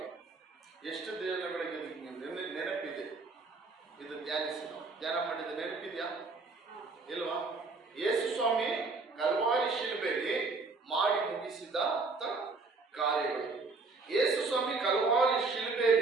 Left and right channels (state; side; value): quieter; left; 3.9 dB